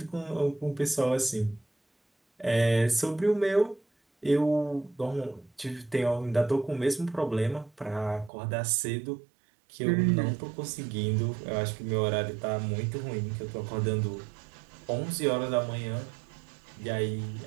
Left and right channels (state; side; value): drops out; left; at 8.3 s